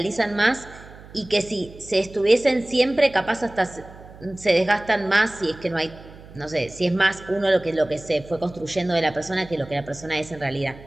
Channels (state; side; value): noise; right; hum, 19 dB below the sound